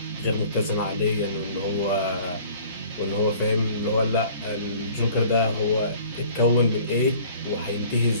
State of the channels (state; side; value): inverted; both; correlation -0.50